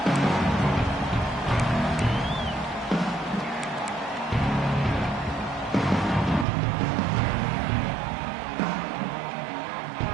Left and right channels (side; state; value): left; drops out; at 6.5 s